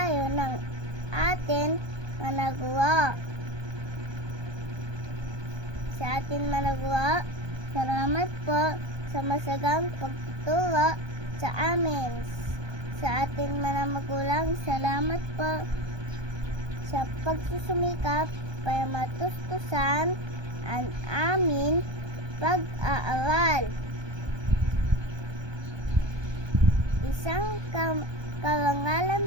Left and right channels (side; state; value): left; late; 1.2 ms